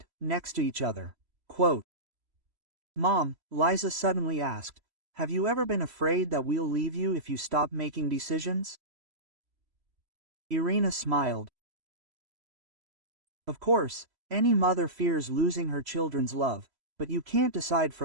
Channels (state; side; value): late; left; 3.1 ms